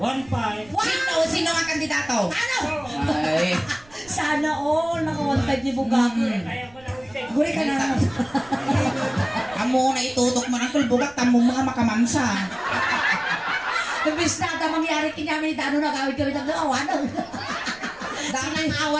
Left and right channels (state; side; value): noise; right; rumble, 26 dB below the sound